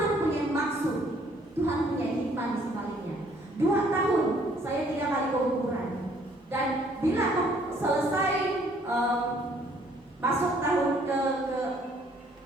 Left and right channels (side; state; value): both; normal; correlation 0.62